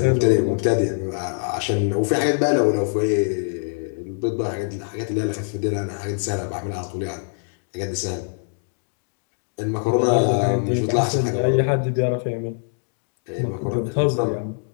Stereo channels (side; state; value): right; silent; digital silence